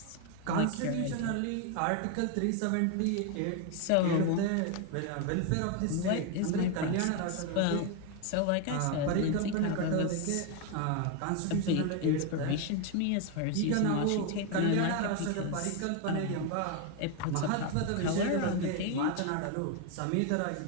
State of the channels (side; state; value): both; different; correlation 0.01